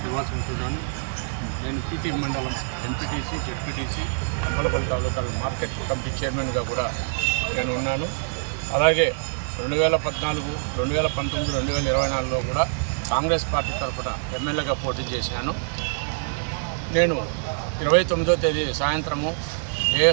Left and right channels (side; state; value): left; silent; 62 dB below the other